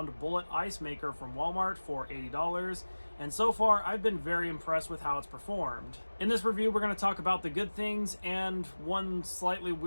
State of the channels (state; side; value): inverted; both; correlation -1.00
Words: bullet ice maker from Walmart for $80, and so far I've been very impressed with how it's performed. In this review, we're going to talk about the good things and one slightly